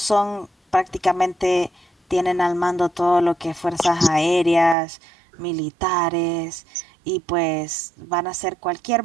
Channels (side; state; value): left; drops out; at 4.8 s